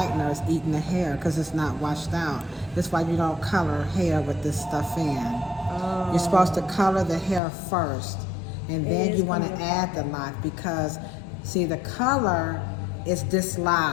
is eating the hair because it's not washed out. That's why you don't color hair with this stuff in. You're supposed to color the hair first, and then you want to add the lock because, see, the color is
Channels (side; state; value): right; drops out; at 7.4 s